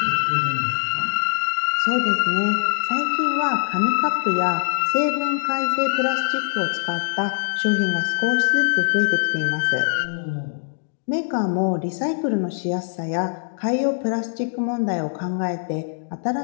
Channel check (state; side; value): silent; right; digital silence